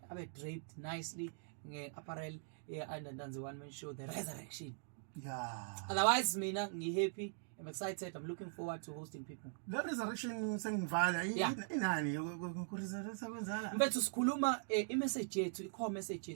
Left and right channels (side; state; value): left; silent; digital silence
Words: draped nicely nge-apparel aya_Ntanzi one man show the resurrection. Yeah. Otherwise mina ngi-happy, I'm excited, I'm looking forward to hosting people. The resurrection sengivala inani kuresurrecta kwenzala. Mfethu sikhuluma i-message yethu, i-core message